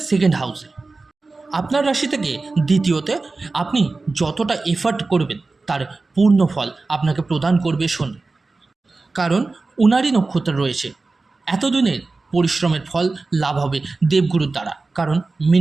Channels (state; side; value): quieter; left; 3.6 dB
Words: সেকেন্ড হাউসে। আপনার রাশি থেকে দ্বিতীয়তে আপনি যতটা এফার্ট করবেন তার পূর্ণ ফল আপনাকে প্রদান করবে শনি, কারণ উনারই নক্ষত্র রয়েছে। এতদিনের পরিশ্রমের ফল লাভ হবে দেবগুরুর দ্বারা, কারণ